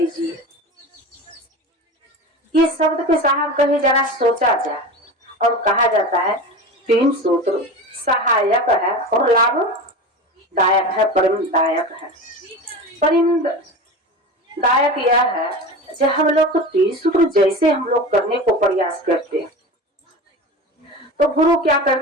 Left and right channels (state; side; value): normal; both; correlation 0.30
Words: ये शब्द के साहब कहे जरा सोचा जाए। और कहा जाता है 3 सूत्र सहायक है और लाभदायक है, परिमदायक है। परिमदायक यह है जब हम लोग को 3 सूत्र जैसे हम लोग करने को प्रयास करते हैं तो गुरु क्या